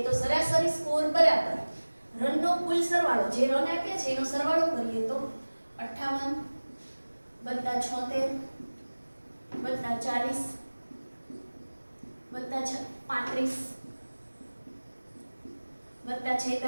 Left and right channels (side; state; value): both; inverted; correlation -1.00